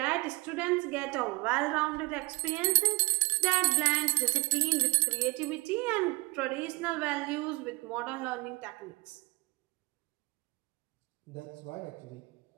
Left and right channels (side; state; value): left; quieter; 26.0 dB